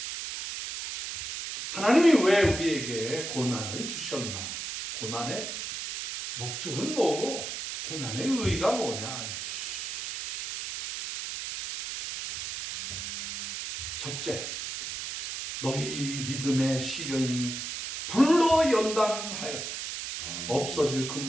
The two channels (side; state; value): right; noise; hiss, 5 dB below the sound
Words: 하나님이 왜 우리에게 고난을 주셨나? 고난의 목적은 뭐고 고난의 의의가 뭐냐? 첫째, 너희 믿음의 시련이 불로 연단하여도 없어질